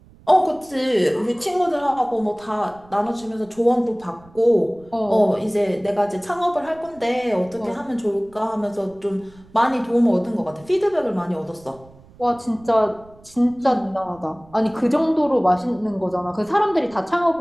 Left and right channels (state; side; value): noise; right; rumble, 25 dB below the sound